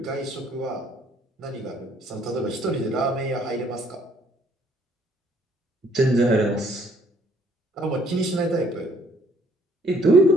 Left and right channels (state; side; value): normal; both; correlation 0.63